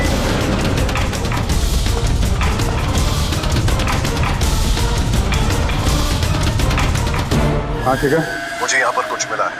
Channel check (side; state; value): both; identical; correlation 1.00